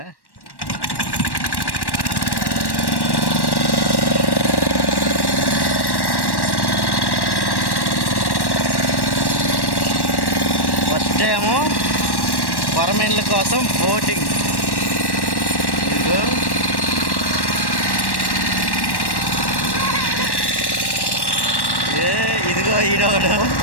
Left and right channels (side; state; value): right; late; 1.1 ms